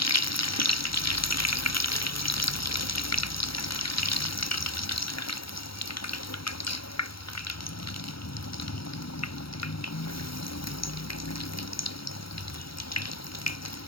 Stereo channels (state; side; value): late; right; 0.75 ms